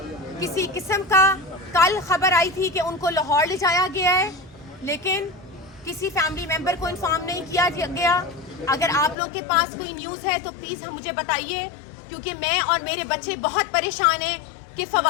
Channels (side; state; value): right; drops out; at 9.2 s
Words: کسی قسم کا. کل خبر آئی تھی کہ ان کو لاہور لے جایا گیا ہے لیکن کسی فیملی ممبر کو انفارم نہیں کیا گیا. اگر آپ لوگ کے پاس کوئی نیوز ہے تو پلیز ہم مجھے بتائیے, کیونکہ میں اور میرے بچے بہت پریشان ہیں کہ